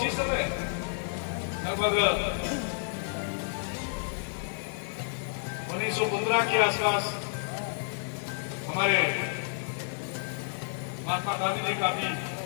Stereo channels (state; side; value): silent; right; digital silence